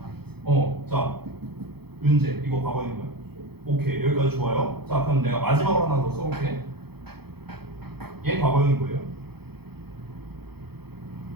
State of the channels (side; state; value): left; late; 0.96 ms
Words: 자, 윤재 이거 과거형이 뭐야? 오케이, 여기까지 좋아요. 자, 그럼 내가 마지막으로 하나 더 써볼게. 얘 과거형이 뭐예요?